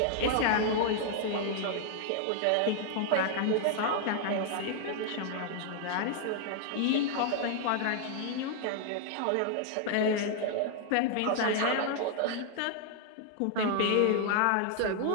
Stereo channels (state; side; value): different; both; correlation 0.00